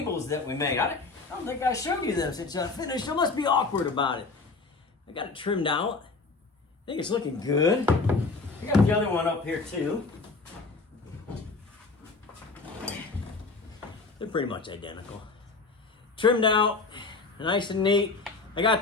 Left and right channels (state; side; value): quieter; right; 4.0 dB